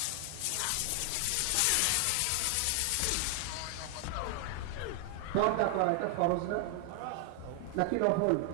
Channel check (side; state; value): both; different; correlation 0.00